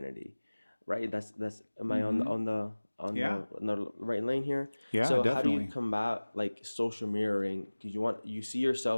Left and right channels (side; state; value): both; inverted; correlation -1.00